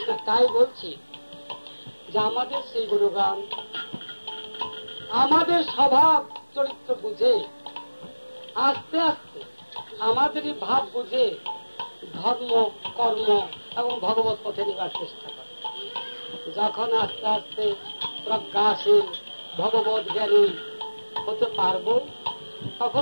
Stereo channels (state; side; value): inverted; both; correlation -1.00